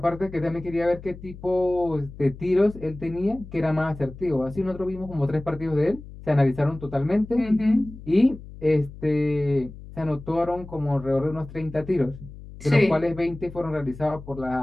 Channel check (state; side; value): noise; left; hum, 15 dB below the sound